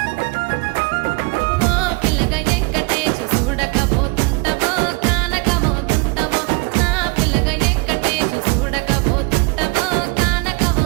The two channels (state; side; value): quieter; left; 28.6 dB